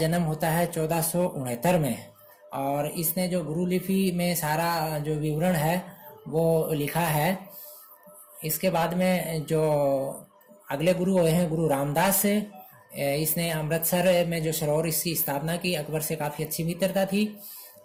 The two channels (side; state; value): both; identical; correlation 1.00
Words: होता है 1469 में और इसने जो गुरु लिपि में सारा जो विवरण है वो लिखा है। इसके बाद में जो अगले गुरु हुए हैं गुरु रामदास। इसने अमृतसर में जो सरोवर इसकी स्थापना की, अकबर से काफ़ी अच्छी मित्रता थी।